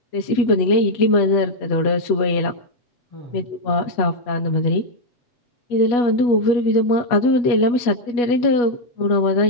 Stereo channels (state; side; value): late; right; 8.2 ms